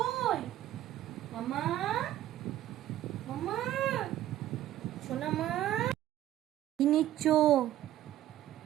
মামা মামা সোনা মা কি নিচ্ছ।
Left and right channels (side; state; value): left; quieter; 13.1 dB